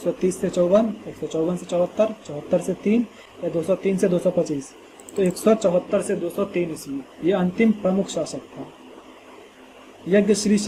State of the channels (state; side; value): identical; both; correlation 1.00